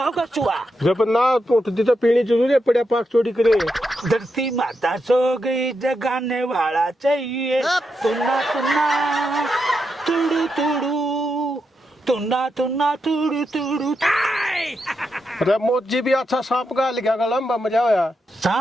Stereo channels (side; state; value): both; normal; correlation 0.84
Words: चुआ। जब ना तो उठती तो पीनी जरूर है, पड़ा पाक चोरी करे। धरती माता सो गई, जगाने वाला चाहिए। तुन्ना तुन्ना तुड़ू तुड़ू, तुन्ना तुन्ना तुड़ू तुड़ू। अरे मोजी भी अच्छा सांप का लिखा गला में मजा आया।